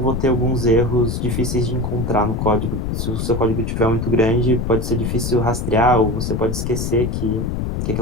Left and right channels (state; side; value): noise; left; rumble, 2 dB below the sound